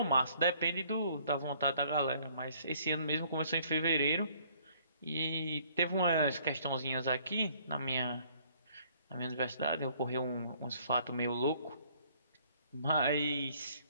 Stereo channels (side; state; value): both; inverted; correlation -0.61